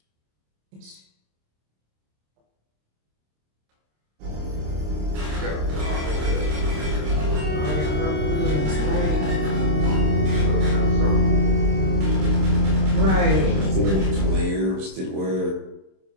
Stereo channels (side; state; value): left; late; 26 ms